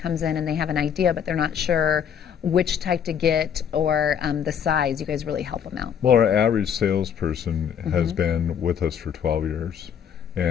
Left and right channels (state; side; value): quieter; right; 8.2 dB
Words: in and they have an idea but they're not sure which type to get or the size. You guys really help them out. Well, our average salesperson has been with us for 12 years.